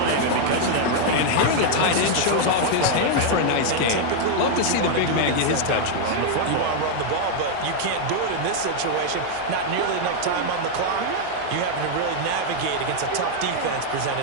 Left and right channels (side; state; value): both; different; correlation 0.00